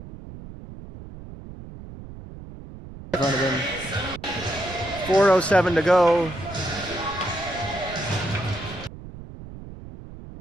in front of him. 4:07 to go.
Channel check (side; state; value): right; noise; rumble, 14 dB below the sound